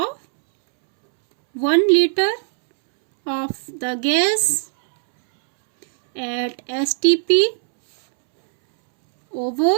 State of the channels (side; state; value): left; silent; 67 dB below the other